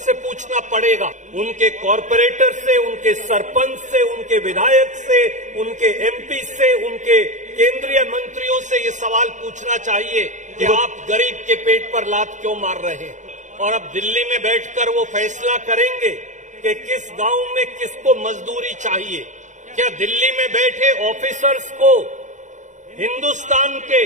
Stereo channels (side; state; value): left; late; 0.35 ms